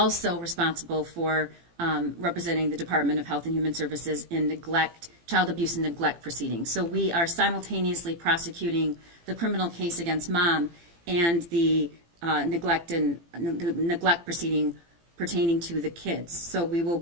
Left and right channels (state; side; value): late; left; 18 ms